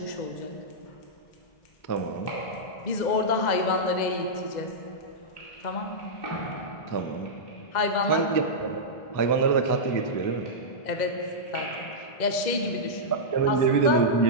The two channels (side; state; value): right; late; 2.0 ms